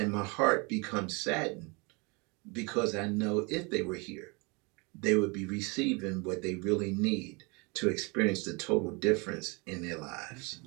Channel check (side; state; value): left; quieter; 29.2 dB